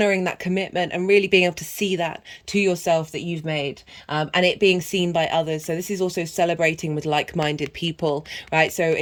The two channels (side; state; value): both; identical; correlation 1.00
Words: that commitment and really being able to see that to yourself that you've made and it being seen by others. So this is also celebrating with like-minded people, right? So